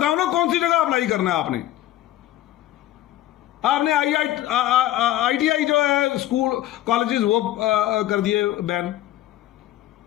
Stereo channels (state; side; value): quieter; right; 13.8 dB